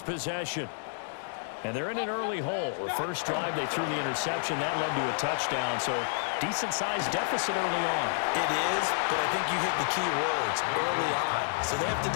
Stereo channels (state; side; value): silent; right; digital silence